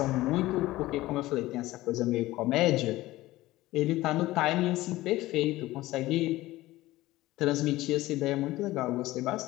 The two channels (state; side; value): quieter; right; 17.5 dB